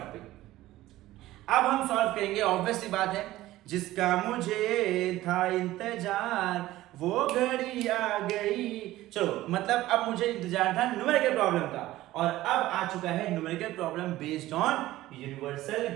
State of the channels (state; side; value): quieter; left; 16.1 dB